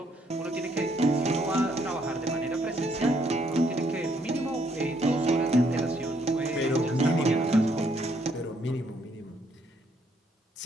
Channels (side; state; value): both; normal; correlation 0.70